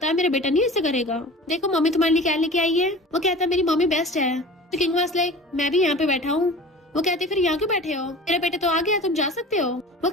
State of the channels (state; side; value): normal; both; correlation 0.38